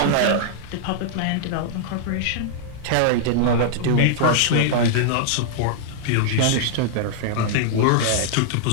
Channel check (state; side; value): different; both; correlation -0.01